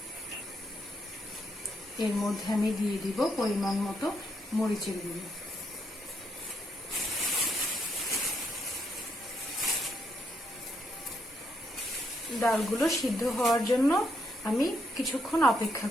এর মধ্যে আমি দিয়ে দিব পরিমাণ মতো মরিচের গুঁড়ো। ডালগুলো সিদ্ধ হওয়ার জন্য আমি কিছুক্ষণ অপেক্ষা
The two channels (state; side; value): normal; both; correlation 0.77